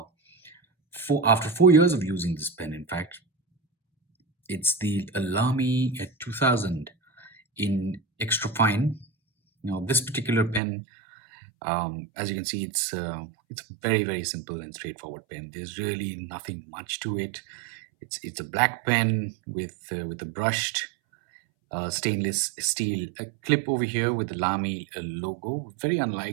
4 years of using this pen. In fact, it's the Lamy 2000 in extra fine. Now, this particular pen, as you can see, it's a very simple and straightforward pen. There's really nothing much to it. It's a black pen with a brushed stainless steel clip over here with the Lamy logo. Very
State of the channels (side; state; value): left; drops out; at 10.6 s